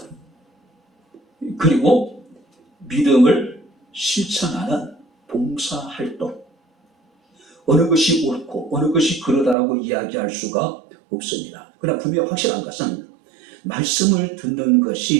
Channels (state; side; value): drops out; left; at 9.6 s